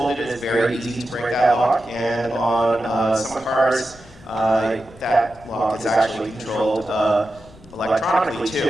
it is very easy to break that lock, and on some cars, that lock is actually controlled electronically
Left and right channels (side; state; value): left; noise; rumble, 22 dB below the sound